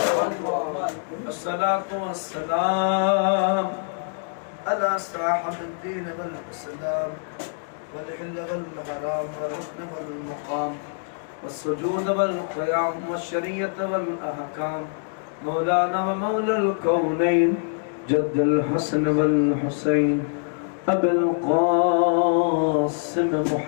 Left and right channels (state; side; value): silent; right; digital silence